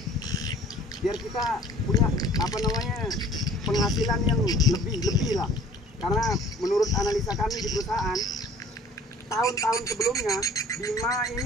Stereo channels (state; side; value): normal; both; correlation 0.51